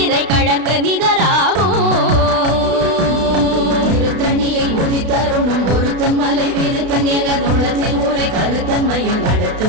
இறை கழற்கு நிகராகும் திருத்தணியில் உதித்தருணும் ஒருத்தன் மலை வீருத்தன் எனதுள்ளத்தில் ஊரை கருத்தன்மையில் நடத்து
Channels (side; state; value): left; late; 32 ms